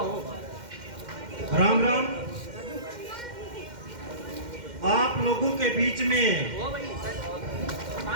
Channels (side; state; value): left; late; 2.1 ms